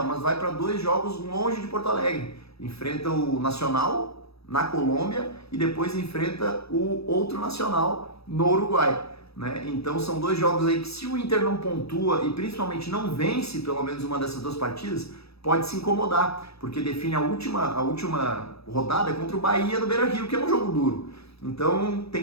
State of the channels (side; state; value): right; late; 0.78 ms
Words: mas vai para 2 jogos longe de Porto Alegre. Enfrenta o Nacional na Colômbia e depois enfrenta o outro Nacional no Uruguai, né? Então são 2 jogos aí que, se o Inter não pontua e principalmente não vence pelo menos uma dessas 2 partidas, pode se incomodar, porque define a última rodada contra o Bahia no Beira-Rio, que é um jogo duro. Então tem